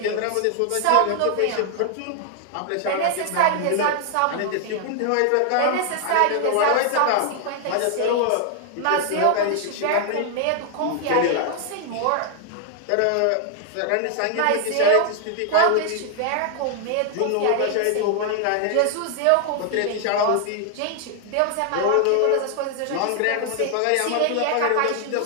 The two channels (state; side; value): different; both; correlation 0.00